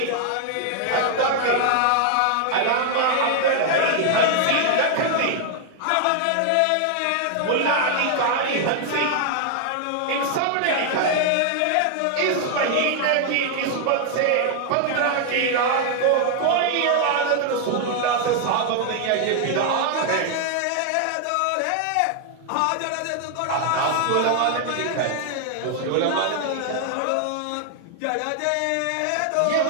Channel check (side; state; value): both; different; correlation 0.00